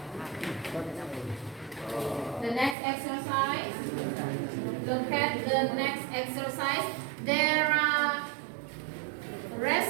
the next exercise. Look at the next exercise. There are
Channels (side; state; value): left; drops out; at 2.8 s